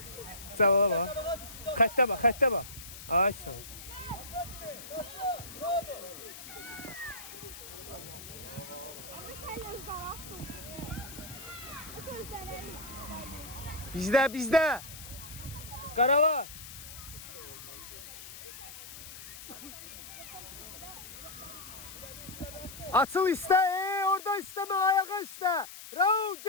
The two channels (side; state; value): left; noise; hiss, 13 dB below the sound